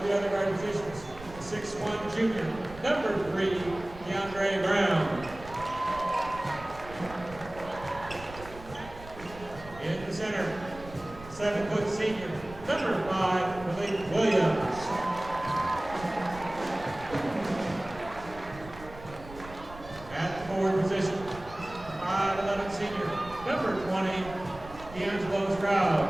the other guard positions, the 6'1" junior, number 3, DeAndre Brown. In the center, 7-foot senior, number 5, Malik Williams. At the forward position, 5'11" senior, number 20, D'Angelo Stroud.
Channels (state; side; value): noise; right; rumble, 16 dB below the sound